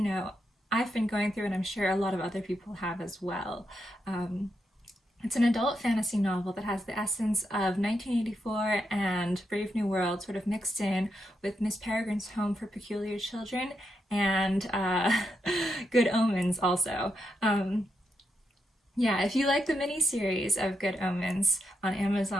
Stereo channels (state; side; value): normal; both; correlation 0.83